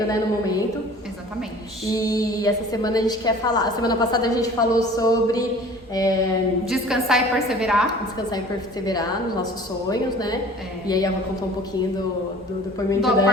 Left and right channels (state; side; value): normal; both; correlation 0.46